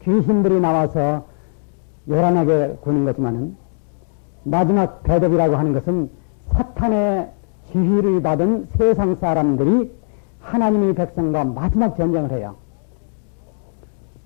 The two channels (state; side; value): silent; right; digital silence